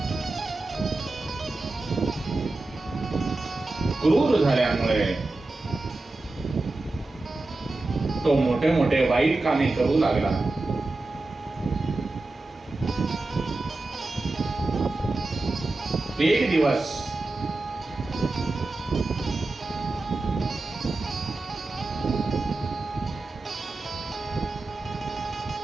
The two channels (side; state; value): left; quieter; 3.1 dB